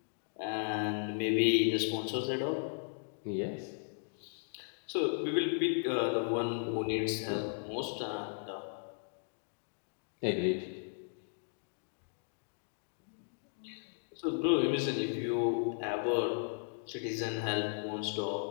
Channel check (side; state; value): right; silent; digital silence